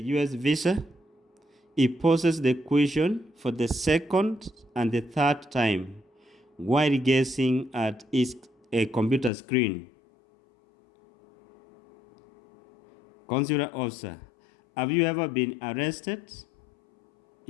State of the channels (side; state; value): right; drops out; at 9.3 s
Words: US visa?" He poses the question for the second and the third time while gazing at a computer screen. Consular officer: "Have you ever been arrested?"